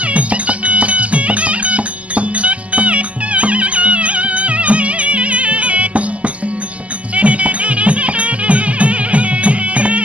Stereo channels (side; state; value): left; late; 0.066 ms